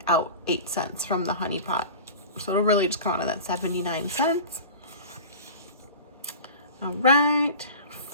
out 8 cents from the honey pot. So it'll really just come out of that 79 cents. All right,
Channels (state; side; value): inverted; both; correlation -0.36